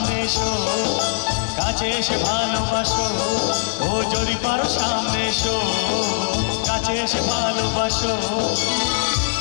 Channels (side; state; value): right; silent; digital silence